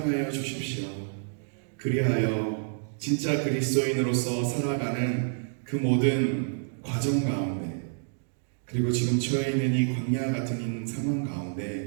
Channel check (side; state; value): left; silent; digital silence